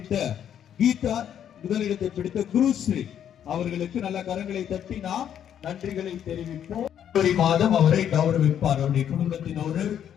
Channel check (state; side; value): quieter; right; 9.5 dB